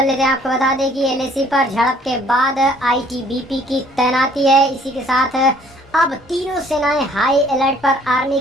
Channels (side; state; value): both; normal; correlation 0.59